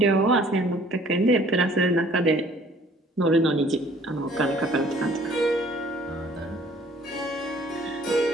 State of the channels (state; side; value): normal; both; correlation 0.56